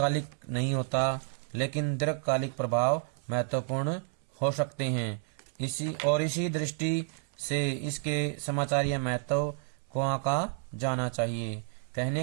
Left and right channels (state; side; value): silent; left; 57 dB below the other